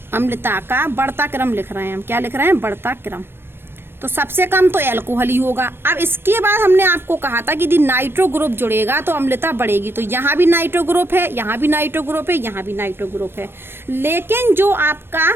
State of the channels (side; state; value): left; late; 0.11 ms